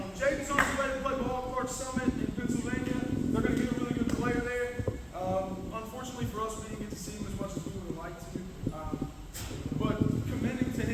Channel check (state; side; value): identical; both; correlation 1.00